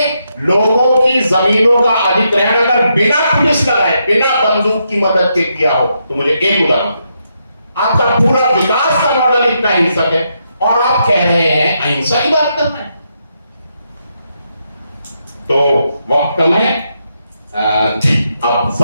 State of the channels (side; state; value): both; inverted; correlation -0.80